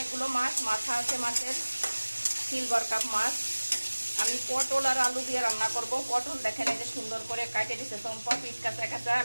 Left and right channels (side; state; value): both; inverted; correlation -1.00